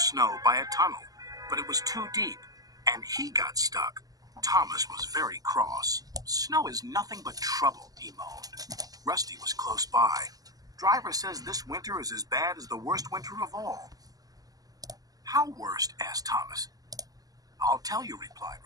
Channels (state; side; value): late; left; 0.17 ms